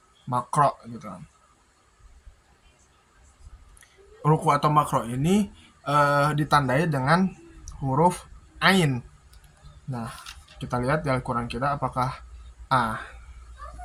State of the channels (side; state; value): both; identical; correlation 1.00